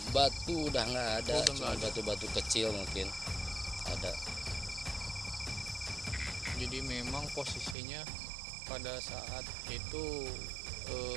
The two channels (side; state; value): left; drops out; at 7.8 s